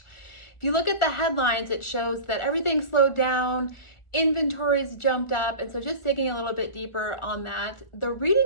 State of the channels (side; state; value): right; late; 1.4 ms